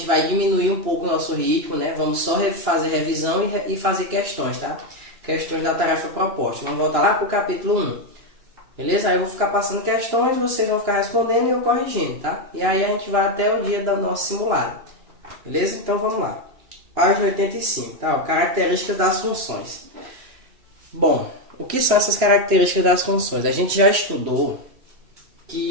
vai diminuir um pouco o nosso ritmo, né? Vamos só fazer revisão e fazer questões, tá? Questões da tarefa proposta. Vamos voltar lá para o capítulo 1. Beleza? Aí eu vou ficar passando questões, vocês vão ficar respondendo e eu corrigindo, tá? E aí a gente vai até o dia do nosso simulado. Beleza? Então vamos lá. Página 85, tá? Características das funções. Bom, o que são essas características das funções? A gente já estudou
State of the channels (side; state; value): left; late; 2.9 ms